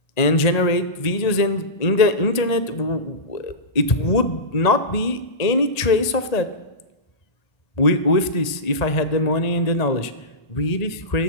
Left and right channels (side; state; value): right; late; 1.8 ms